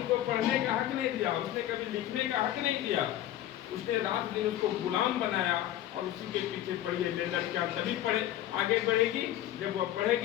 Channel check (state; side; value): quieter; right; 12.8 dB